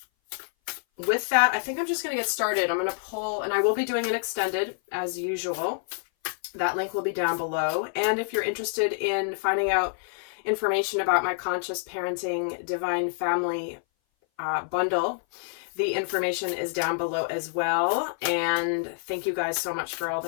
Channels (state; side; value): silent; right; 58 dB below the other